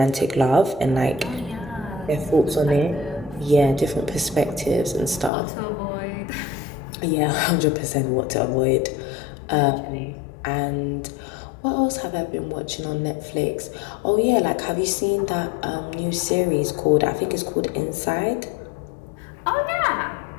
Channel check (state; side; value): drops out; right; at 5.3 s